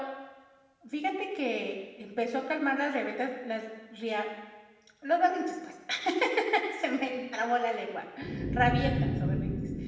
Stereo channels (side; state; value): both; identical; correlation 1.00